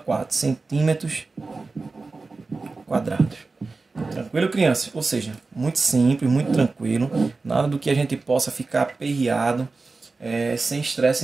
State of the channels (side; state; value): left; quieter; 3.8 dB